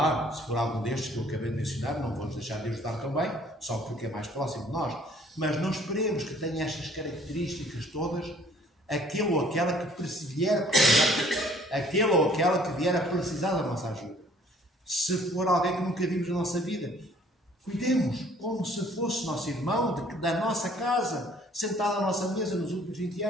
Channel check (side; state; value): both; normal; correlation 0.57